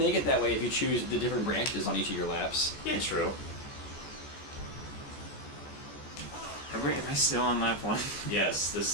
it that way if you choose the different branches on each of your laps. Yeah, true. Am I still on lap 1? Yes,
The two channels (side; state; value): right; late; 14 ms